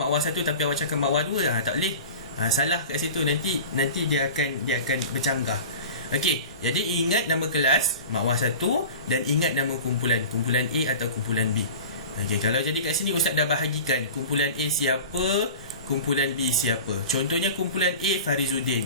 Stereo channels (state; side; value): inverted; both; correlation -0.36